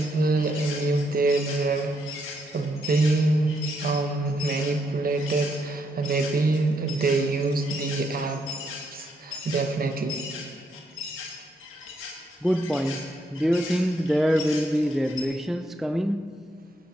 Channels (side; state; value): both; normal; correlation 0.76